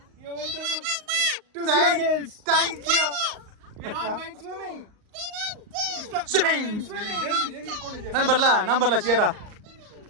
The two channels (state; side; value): late; left; 38 ms